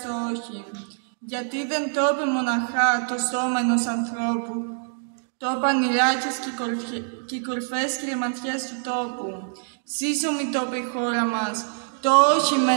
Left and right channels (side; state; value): left; silent; digital silence